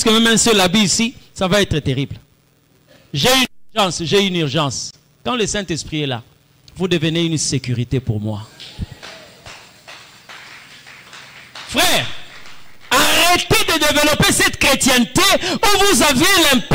que même un seul habit ici, ça va être terrible. J'ai une urgence. Quand le Saint-Esprit est là, vous devenez une sécurité pour moi. Frère, arrêtez de développer cette chrétienté où vous avez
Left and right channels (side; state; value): both; identical; correlation 1.00